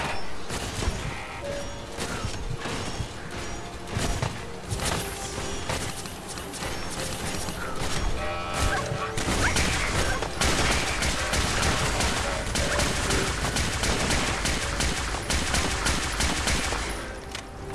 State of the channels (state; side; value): identical; both; correlation 1.00